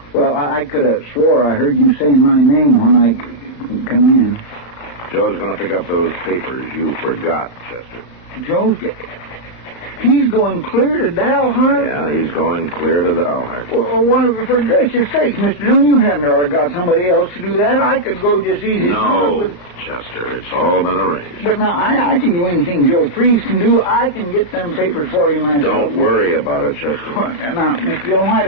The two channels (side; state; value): right; late; 34 ms